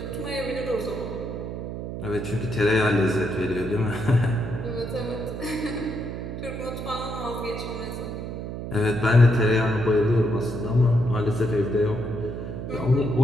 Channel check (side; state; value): right; noise; hum, 7 dB below the sound